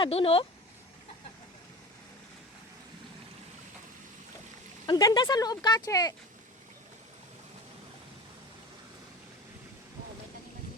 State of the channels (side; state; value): both; normal; correlation 0.35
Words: dun, oh. Ang ganda sa loob, Kache.